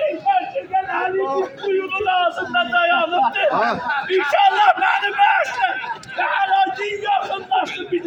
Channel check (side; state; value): both; identical; correlation 1.00